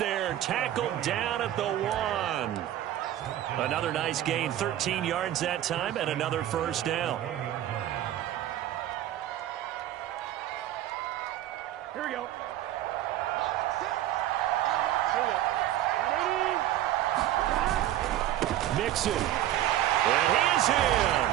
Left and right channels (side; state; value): left; quieter; 12.9 dB